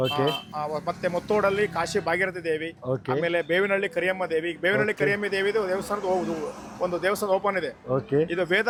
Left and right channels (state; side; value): identical; both; correlation 1.00